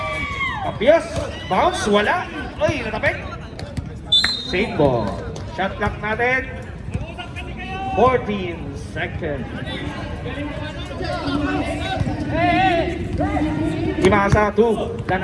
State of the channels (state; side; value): identical; both; correlation 1.00